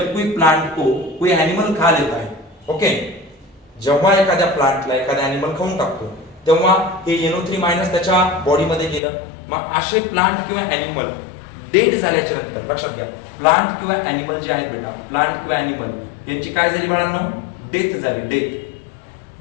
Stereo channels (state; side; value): drops out; right; at 9.0 s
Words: प्लांट को कोई एनिमल खा लेता है, ओके जेव्हा एखाद्या प्लांटला एखादा एनिमल खाऊन टाकतो तेव्हा हे NO3- त्याच्या बॉडीमध्ये गेलं। मग असे प्लांट किंवा एनिमल डेड झाल्याच्या नंतर, लक्षात घ्या, प्लांट किंवा एनिमल जे आहेत बेटा, प्लांट किंवा एनिमल यांची काय झाली बाळांनो? डेथ झाली, डेथ।